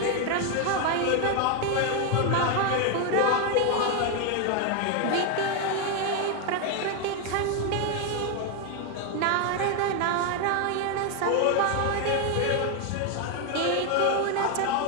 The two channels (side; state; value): both; different; correlation 0.01